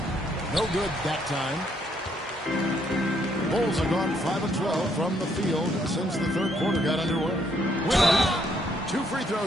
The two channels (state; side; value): normal; both; correlation 0.70